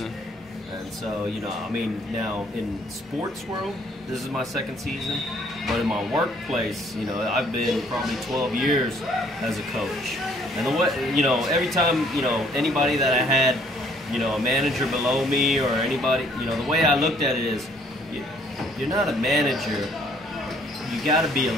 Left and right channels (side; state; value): both; normal; correlation 0.62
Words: And so, you know, I mean, now in sports world, this is my second season. But in my workplace, you know, I've been probably 12 years as a coach. And the way, you know, every time, you know, anybody that I had, you know, a manager below me or anybody, you know, the way I looked at it is, you're not a manager, you got to be a